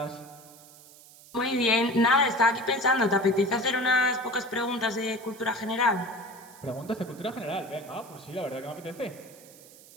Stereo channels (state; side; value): noise; right; hiss, 22 dB below the sound